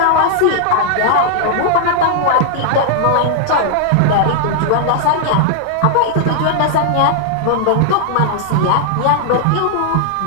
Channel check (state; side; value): different; both; correlation 0.00